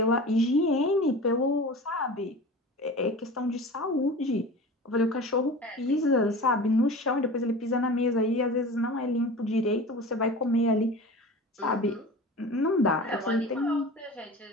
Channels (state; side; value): normal; both; correlation 0.35